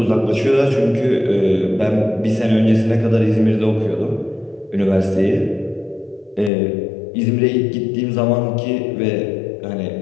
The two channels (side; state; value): right; drops out; at 6.5 s